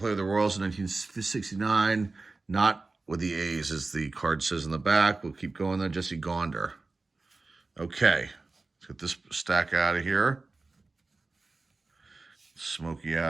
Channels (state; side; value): quieter; left; 3.6 dB